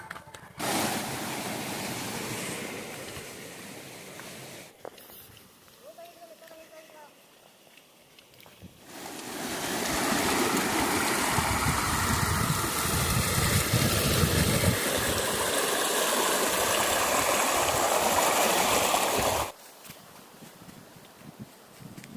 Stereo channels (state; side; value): identical; both; correlation 1.00